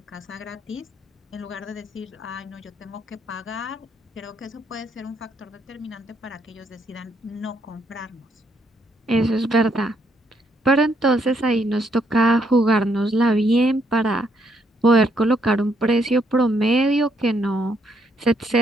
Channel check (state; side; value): normal; both; correlation 0.73